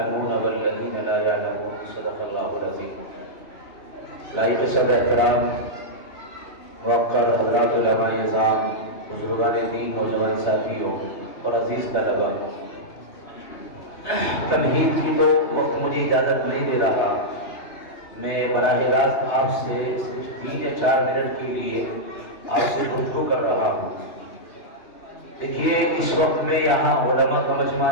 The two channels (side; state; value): right; late; 3.3 ms